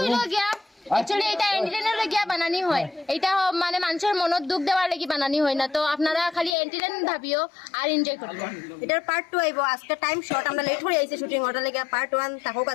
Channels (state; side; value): drops out; right; at 6.6 s